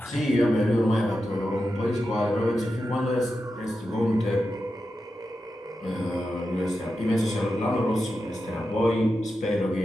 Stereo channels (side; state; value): both; normal; correlation 0.89